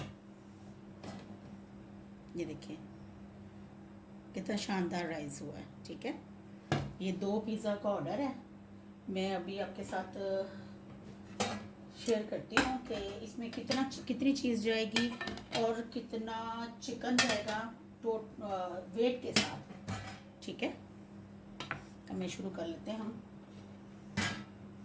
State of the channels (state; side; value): identical; both; correlation 1.00